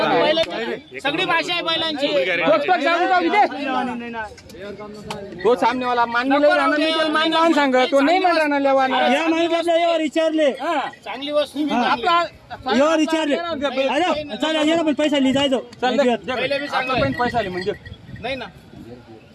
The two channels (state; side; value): identical; both; correlation 1.00